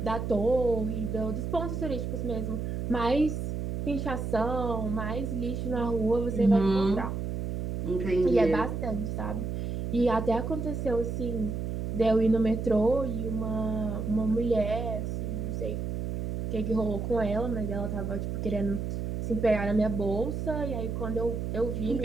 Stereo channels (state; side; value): noise; right; hum, 3 dB below the sound